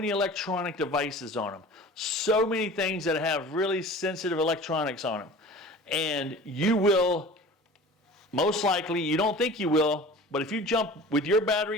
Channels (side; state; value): both; normal; correlation 0.40